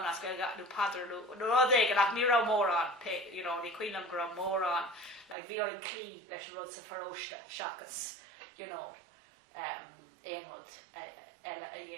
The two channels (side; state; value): left; drops out; at 5.4 s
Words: as go nó padar nó rudéig ach ní rá mórán ní cuioinam go raibh mórán le bhí ar an clí leis an rud sa pharóiste seachas éon rud eile a